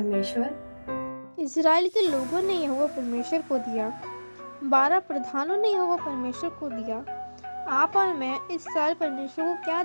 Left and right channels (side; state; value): both; inverted; correlation -1.00